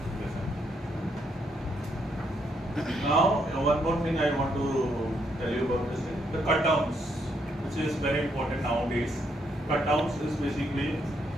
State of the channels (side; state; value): both; normal; correlation 0.75